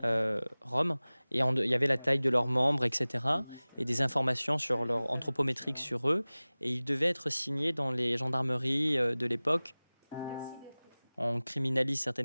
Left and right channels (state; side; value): inverted; both; correlation -0.99